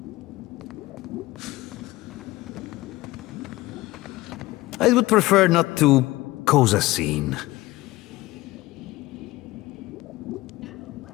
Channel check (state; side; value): quieter; right; 18.8 dB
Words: I would prefer not to cause a scene.